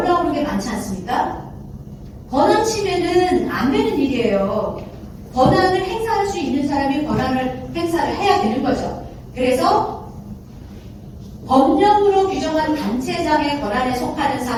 게 많지 않습니까? 권한 침해는 안 되는 일이에요. 권한을 행사할 수 있는 사람이 권한을 행사를 해야 되는 거죠. 그래서 법령으로 규정한 단체장의 권한에 속하는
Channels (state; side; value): identical; both; correlation 1.00